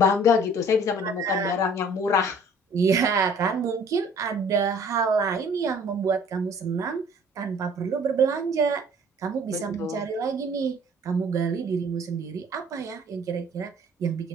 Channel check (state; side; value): normal; both; correlation 0.53